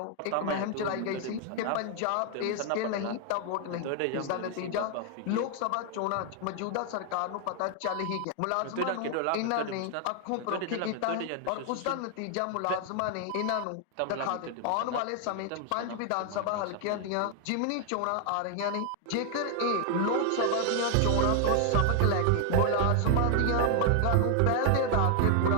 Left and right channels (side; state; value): both; different; correlation 0.00